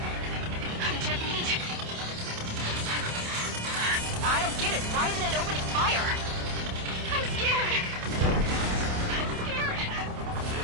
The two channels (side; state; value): left; late; 28 ms